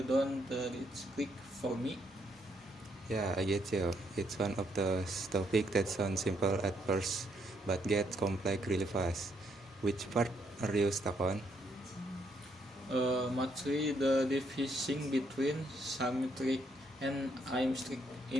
reach click for me. Yeah, I get you. It's one of those topics that sounds simple at first, but gets complex really fast. Which part are you stuck on? Mostly the division between symmetric and asymmetric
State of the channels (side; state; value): both; normal; correlation 0.74